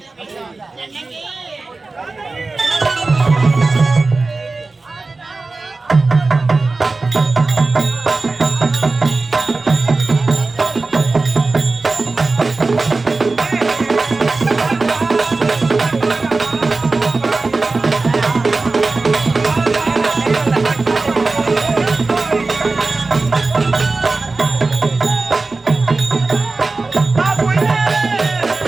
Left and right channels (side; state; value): left; quieter; 3.6 dB